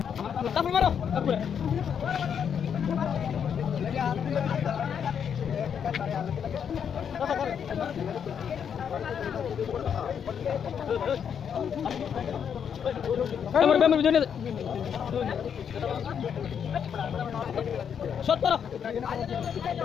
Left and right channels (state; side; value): quieter; right; 7.8 dB